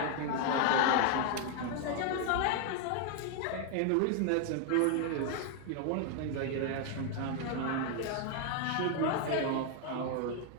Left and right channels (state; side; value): different; both; correlation 0.00